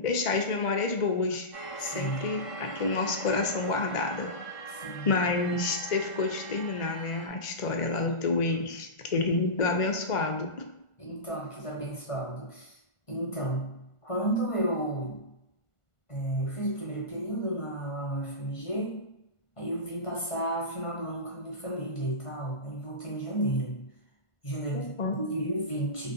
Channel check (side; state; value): right; late; 1.5 ms